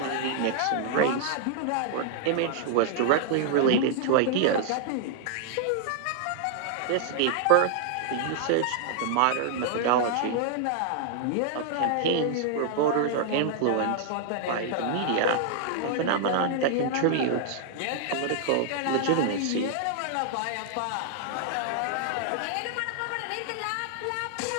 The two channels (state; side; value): different; both; correlation -0.01